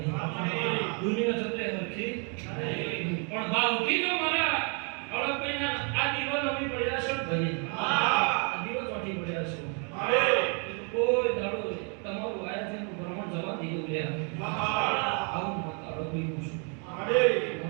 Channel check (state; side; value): quieter; left; 37.9 dB